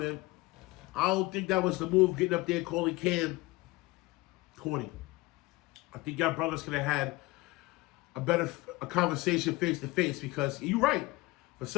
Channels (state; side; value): quieter; right; 21.6 dB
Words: I don't think that was the move. Getting up there calling Cam corny. I think y'all brothers could have had a conversation face to face, because you're right. For